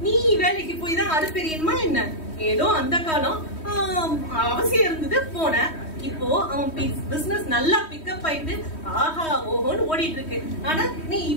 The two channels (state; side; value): late; right; 3.1 ms